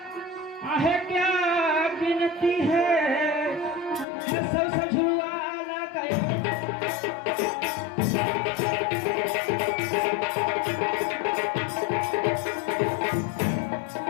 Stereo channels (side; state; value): right; drops out; at 4.0 s